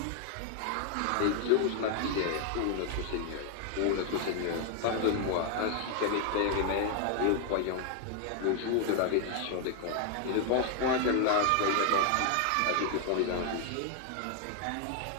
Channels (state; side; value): different; both; correlation 0.00